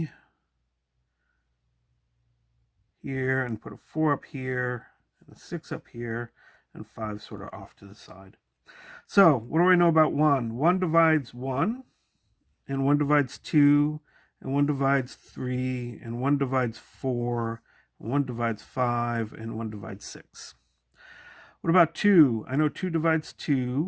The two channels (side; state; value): both; identical; correlation 1.00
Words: here, and put a 4 up here and a 6 up here and 5 sort of off to the side. So what do I know about 1? 1 divides 1, and 1 divides 2, and 1 divides 3, and 1 divides 4, and 1 divides 5, and 1 divides 6. What about 2? I know 2 divides